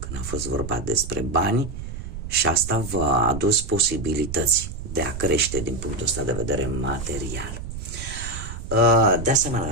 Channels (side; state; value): right; noise; rumble, 9 dB below the sound